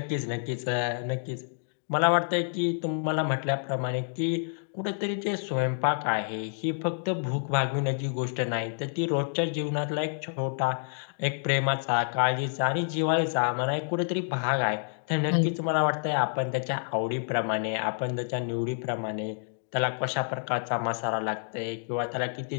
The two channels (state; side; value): silent; right; digital silence